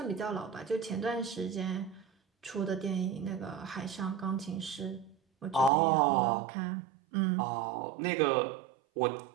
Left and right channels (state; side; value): drops out; left; at 5.7 s